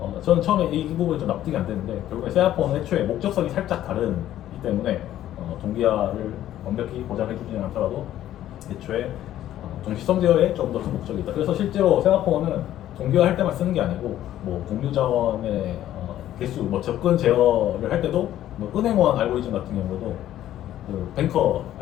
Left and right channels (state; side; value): quieter; right; 12.6 dB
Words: 저는 처음에 이 부분이 좀 납득이 안 되는데 결국에 세아포는 애초에 목적성이 살짝 다르기 때문에 동기화를 완벽히 보장해 주지는 않더라도 애초에 동시성 제어에 좀 더 큰 목적이 있다. 그래서 실제로 세마포는 동기화 할 때만 쓰는 게 아니고 뭐 공유 자원의 개수, 뭐 접근 제어를 할 때도 뭐 은행원 알고리즘 같은 경우도 그 뱅커